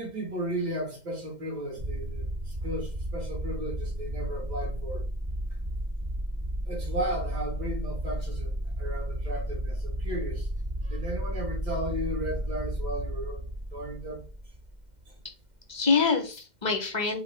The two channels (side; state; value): left; late; 2.1 ms